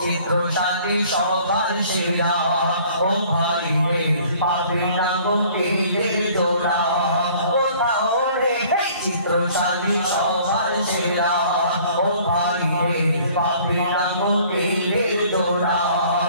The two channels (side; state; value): both; inverted; correlation -0.54